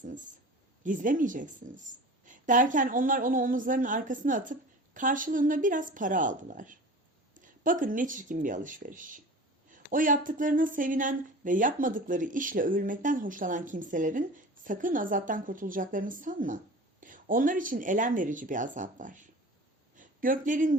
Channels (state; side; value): normal; both; correlation 0.37